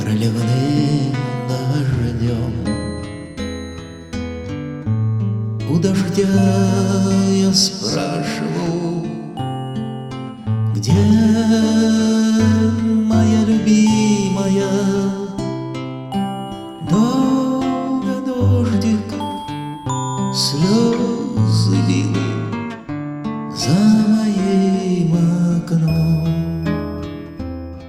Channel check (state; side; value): identical; both; correlation 1.00